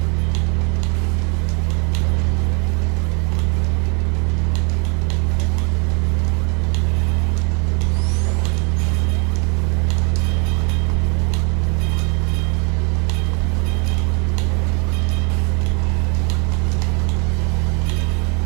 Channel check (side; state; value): left; quieter; 34.4 dB